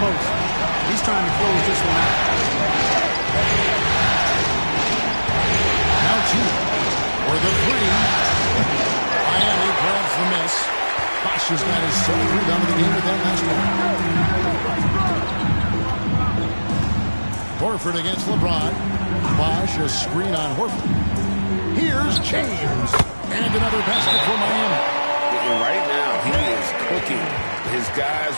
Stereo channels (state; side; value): inverted; both; correlation -1.00